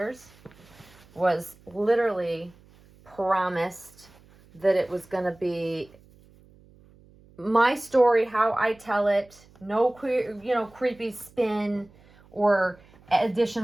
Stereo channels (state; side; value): noise; right; hum, 27 dB below the sound